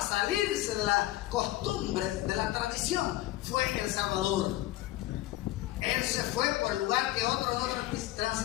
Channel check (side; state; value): right; quieter; 16.1 dB